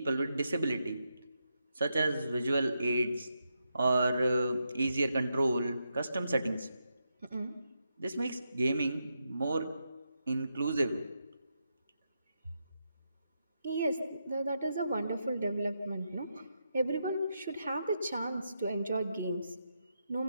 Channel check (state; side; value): inverted; both; correlation -0.84